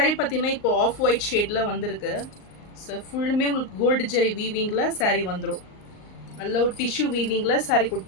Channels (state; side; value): late; right; 38 ms